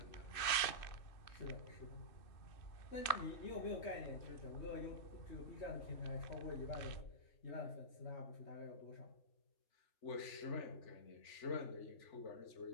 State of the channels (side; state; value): right; late; 2.6 ms